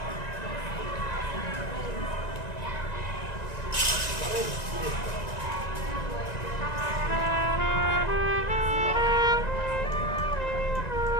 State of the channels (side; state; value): right; late; 1.9 ms